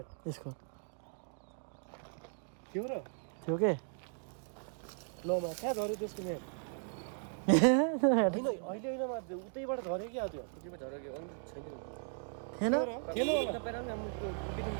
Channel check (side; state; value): left; silent; 53 dB below the other